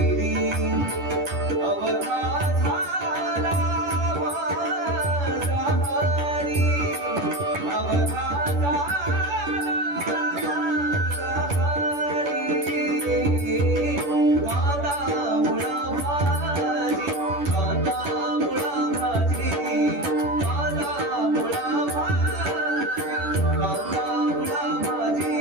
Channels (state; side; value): late; left; 10 ms